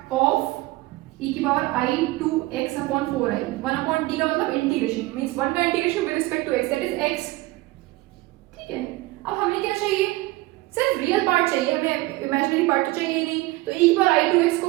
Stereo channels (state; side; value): quieter; left; 20.2 dB